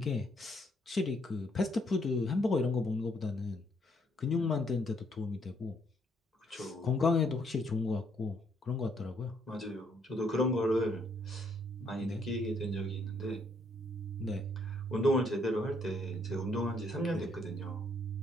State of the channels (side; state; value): both; normal; correlation 0.69